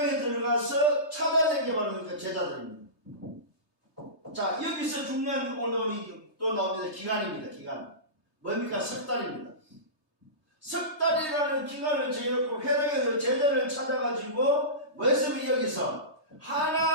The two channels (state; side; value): late; right; 3.3 ms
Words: 들어가서 찾아낸 게 바로 그 제자들입니다. 자, 여기서 중요한 오늘 또 나옵니다. 기간입니다. 기간. 뭡니까? 석 달입니다. 석 달이라는 기간을 정해놓고 회당에 제자를 찾아가지고 뭐였으면 여기서